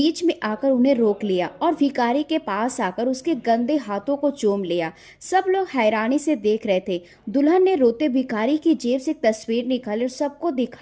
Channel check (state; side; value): identical; both; correlation 1.00